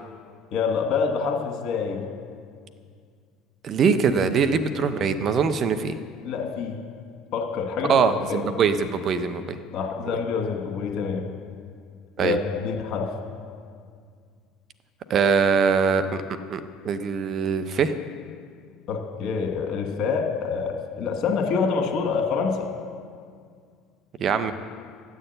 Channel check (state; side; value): normal; both; correlation 0.52